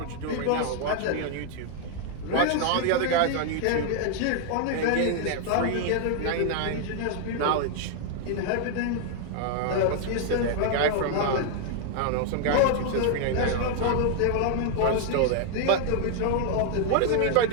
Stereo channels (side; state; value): both; different; correlation 0.00